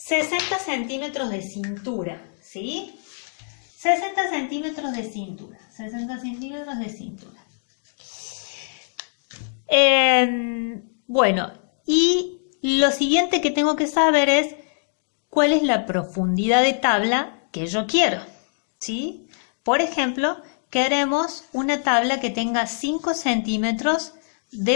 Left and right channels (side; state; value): right; silent; digital silence